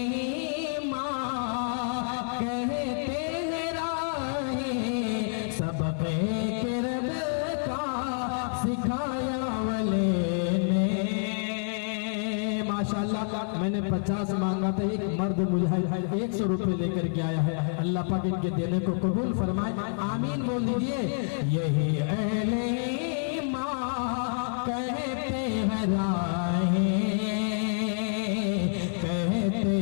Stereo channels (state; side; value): silent; right; 59 dB below the other